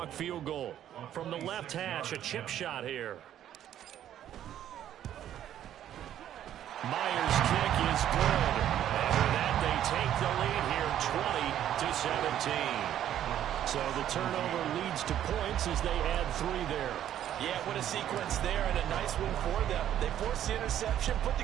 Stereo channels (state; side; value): quieter; left; 11.1 dB